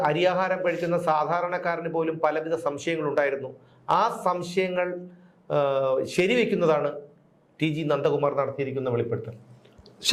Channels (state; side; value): identical; both; correlation 1.00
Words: അരിയാഹാരം കഴിക്കുന്ന സാധാരണക്കാരന് പോലും പലവിധ സംശയങ്ങളുണ്ടായിരുന്നു. ആ സംശയങ്ങൾ ശരിവെക്കുന്നതാണ് TG നന്ദകുമാർ നടത്തിയിരിക്കുന്ന വെളിപ്പെടുത്തൽ.